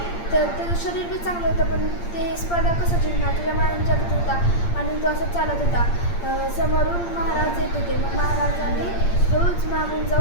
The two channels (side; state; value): right; late; 8.7 ms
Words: त्याचं शरीर बी चांगलं होतं, पण ते स्पर्धा कसं जिंकणार त्याच्या मनात विचार होता. आणि तो असं चालत होता. समोरून महाराज येत होते. मग महाराजांनी रोज मागून